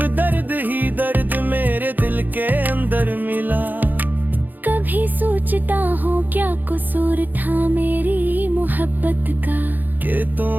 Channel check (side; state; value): left; late; 0.086 ms